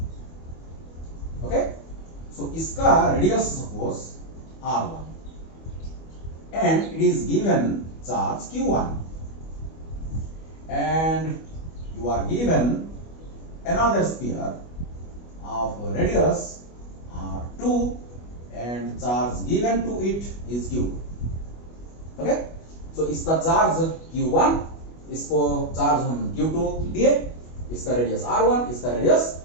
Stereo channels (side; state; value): right; late; 25 ms